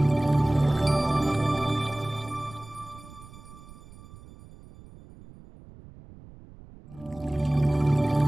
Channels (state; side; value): noise; right; rumble, 20 dB below the sound